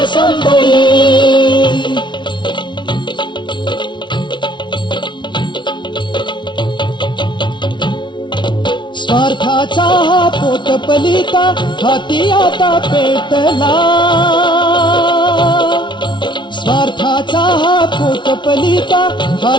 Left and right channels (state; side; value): late; right; 0.23 ms